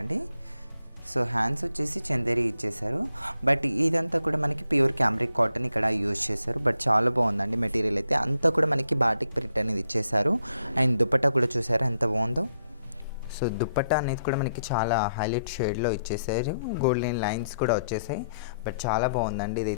అండి. సో హ్యాండ్స్ వచ్చేసి చందేరి ఇచ్చేసారు, బట్ ఇదంతా కూడా మనకి ప్యూర్ క్యామ్రిక్ కాటన్ ఇక్కడ యూజ్ చేశారు. బట్ చాలా బాగుందండి మెటీరియల్ అయితే. అంతా కూడా మనకి బాటిక్ ప్రింట్ అనేది ఇచ్చేసారు. అండ్ దుపట్టా కూడా చూసారు ఎంత బాగుందో. సో దుపట్టా అనేది కూడా మనకి చాలా హైలైట్ షేడ్లో ఇచ్చేసారు. గోల్డెన్ లైన్స్ కూడా వచ్చేసాయి. బట్ చాలా బాగుందండి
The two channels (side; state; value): both; inverted; correlation -0.77